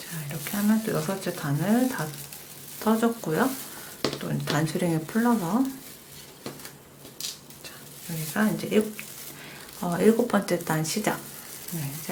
자, 이렇게 하면 또 6째 단을 다 떠줬고요. 또 단수링을 풀러서 여기가 이제 7번째 단 시작. 네,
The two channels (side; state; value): both; identical; correlation 1.00